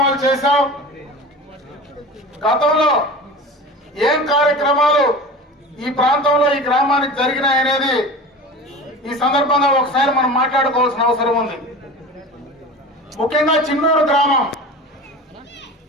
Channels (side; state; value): both; normal; correlation 0.34